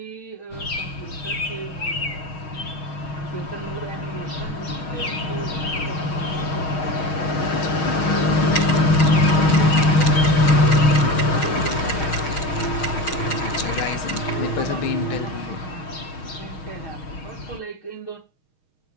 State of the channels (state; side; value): late; right; 6.3 ms